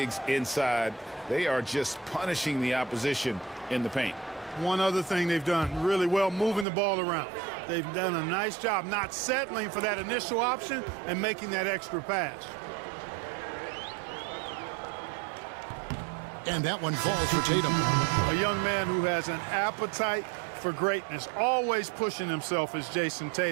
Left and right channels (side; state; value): left; drops out; at 6.7 s